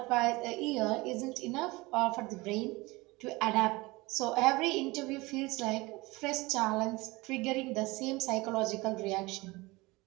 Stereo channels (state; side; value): quieter; left; 22.4 dB